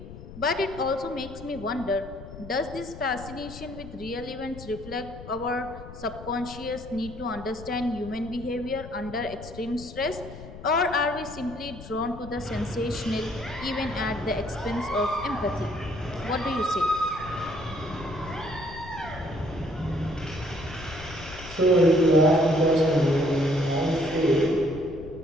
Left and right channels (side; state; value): left; noise; rumble, 14 dB below the sound